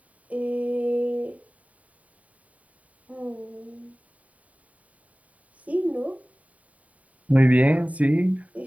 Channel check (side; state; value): left; late; 0.069 ms